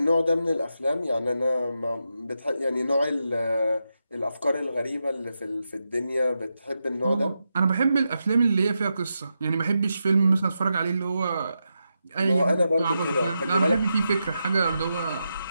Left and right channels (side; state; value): both; inverted; correlation -0.86